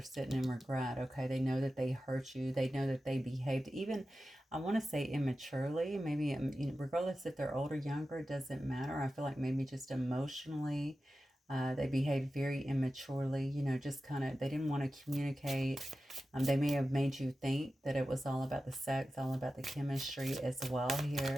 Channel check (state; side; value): normal; both; correlation 0.93